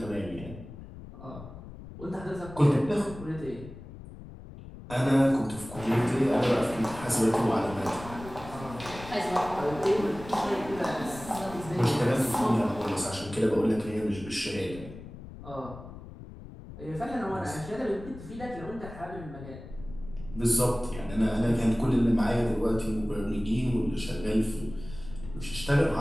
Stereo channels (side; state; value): left; noise; rumble, 14 dB below the sound